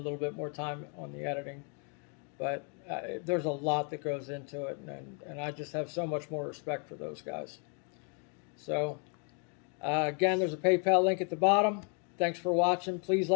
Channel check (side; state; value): right; quieter; 39.4 dB